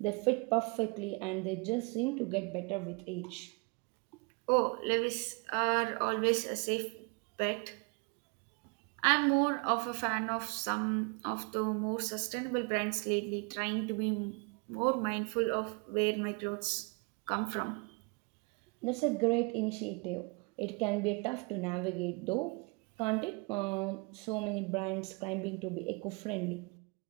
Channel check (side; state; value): left; quieter; 31.5 dB